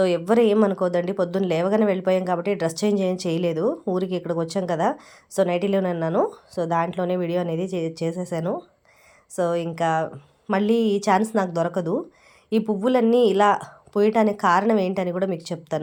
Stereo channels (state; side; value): identical; both; correlation 1.00